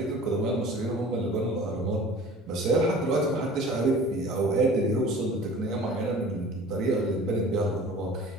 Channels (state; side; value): normal; both; correlation 0.44